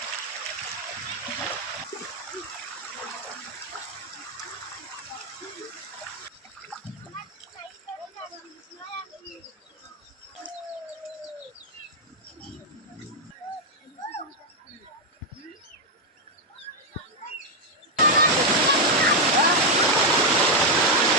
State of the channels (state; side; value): normal; both; correlation 0.02